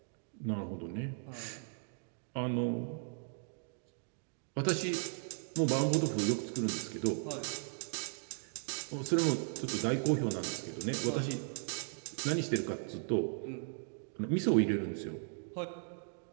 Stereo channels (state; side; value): silent; left; 53 dB below the other